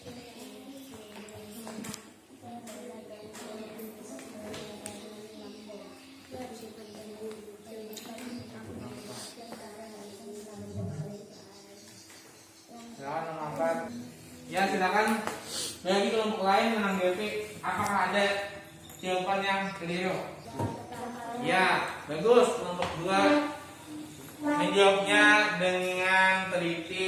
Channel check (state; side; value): identical; both; correlation 1.00